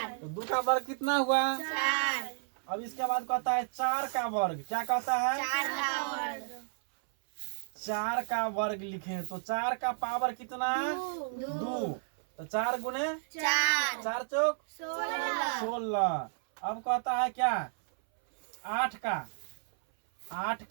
तो 2 का वर्ग कितना हुआ? 4। अब इसके बाद कहता है 4 का वर्ग। क्या कहता है? 4 का वर्ग। 4 का वर्ग लिखें तो 4 का पावर कितना? 2। तो 4 गुने 4। 4 चौक 16। अब कहता है क्या? 8 का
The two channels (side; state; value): left; silent; 56 dB below the other